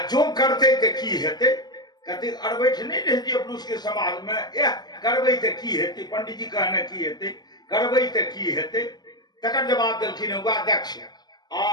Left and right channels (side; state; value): right; late; 0.20 ms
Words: जो करते ते की हेते, कहते अरबैठ नहीं रहती अपन उसके समाज में, यह करबै ते की हेते, पंडित जी कहने की हेते, करबै ते की हेते। तकर जवाब देलखिन हुआ दक्ष,